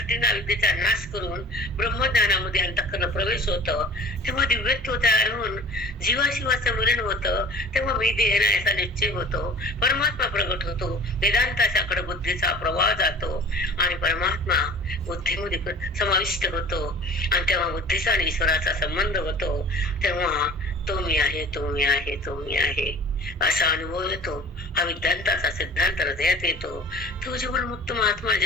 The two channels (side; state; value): both; normal; correlation 0.44